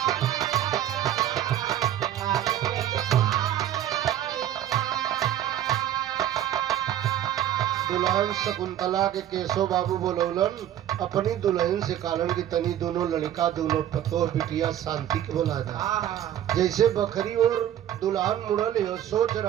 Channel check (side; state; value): left; quieter; 11.4 dB